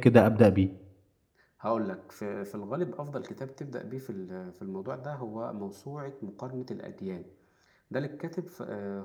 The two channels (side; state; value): both; identical; correlation 1.00